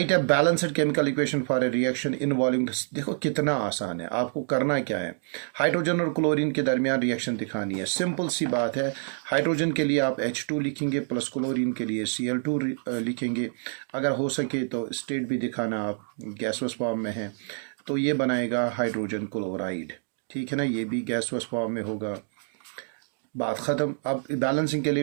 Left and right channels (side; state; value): left; silent; digital silence